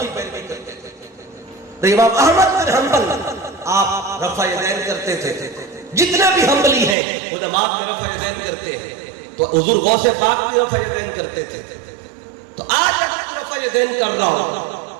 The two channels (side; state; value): left; drops out; at 7.0 s